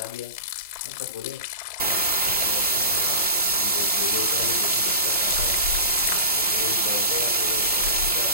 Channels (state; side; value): inverted; both; correlation -0.34